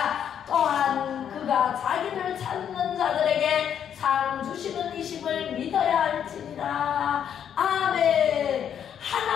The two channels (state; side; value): quieter; right; 8.9 dB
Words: 또한 그가 자기를 찾는 자들에게 상 주시는 이심을 믿어야 할지니라. 아멘.